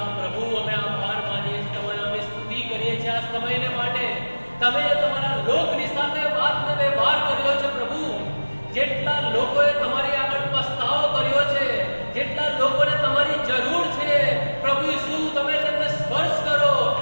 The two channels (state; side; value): inverted; both; correlation -1.00